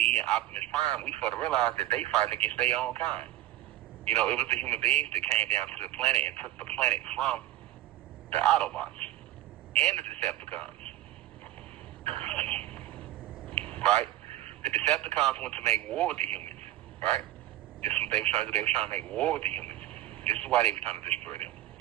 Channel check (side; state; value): left; quieter; 14.5 dB